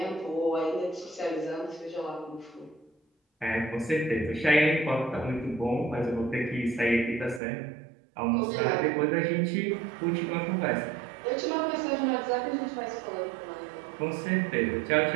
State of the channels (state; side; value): drops out; left; at 7.4 s